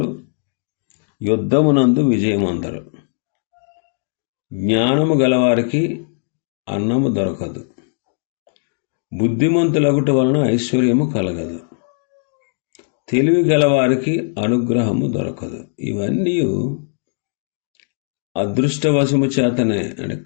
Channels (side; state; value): right; silent; digital silence